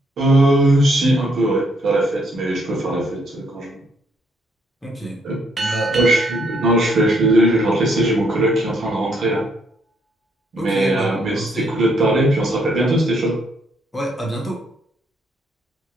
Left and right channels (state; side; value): normal; both; correlation 0.71